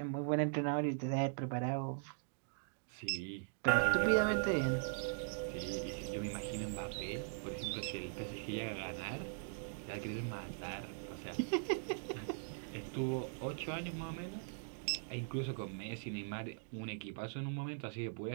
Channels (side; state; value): left; silent; digital silence